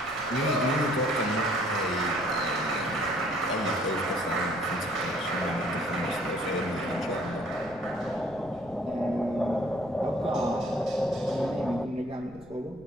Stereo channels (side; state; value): left; noise; rumble, 23 dB below the sound